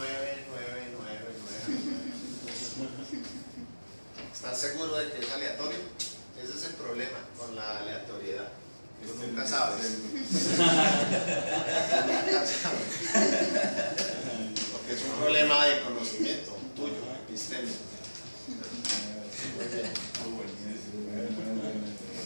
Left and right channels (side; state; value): both; inverted; correlation -1.00